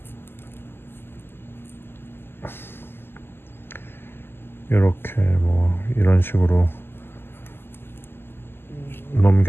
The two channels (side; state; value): right; late; 0.11 ms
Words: 요렇게 뭐 이런 식으로